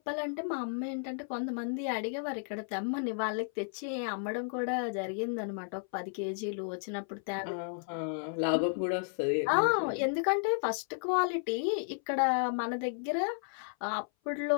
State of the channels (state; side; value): silent; right; 56 dB below the other